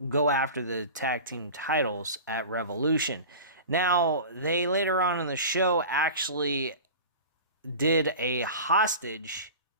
go after the tag team titles at Revolution. Now, they later on in the show actually did a hostage.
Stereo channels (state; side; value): inverted; both; correlation -0.34